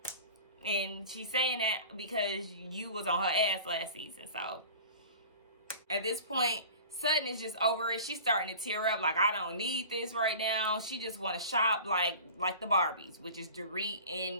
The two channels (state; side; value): inverted; both; correlation -0.39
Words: And she's saying that because you was on her ass last season. So, at this point, Sutton is just over it. She's starting to tear up. Like, I don't need this right now. She just want to shop like the Barbies, which is Dorit